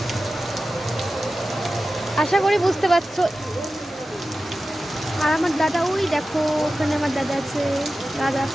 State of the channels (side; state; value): both; normal; correlation 0.94